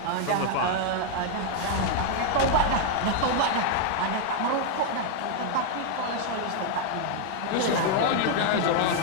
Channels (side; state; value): both; different; correlation 0.00